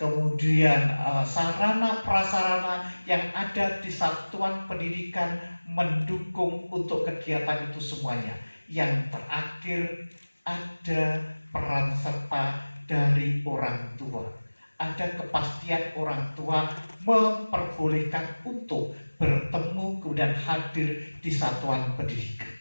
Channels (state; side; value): inverted; both; correlation -1.00